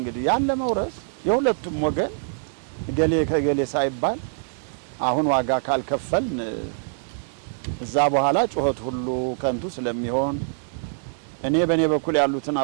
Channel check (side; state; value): left; silent; digital silence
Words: ያን ለመውረስ የሁለቱም ወገን ገሌ ከገሌ ሳይባል አሁን ዋጋ ካልከፈልን እዛ በኋላ ጩኸት ሁሉ ከንቱ ስለሚሆን እኔ በእኔ በኩል ያሉትን